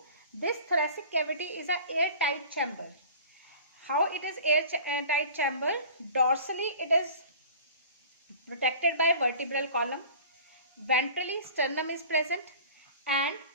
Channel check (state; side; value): inverted; both; correlation -0.43